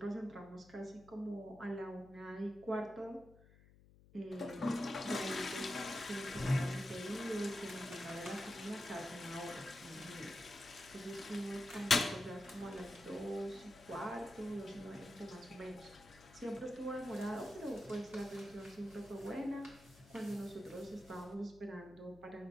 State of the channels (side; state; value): left; noise; hum, 23 dB below the sound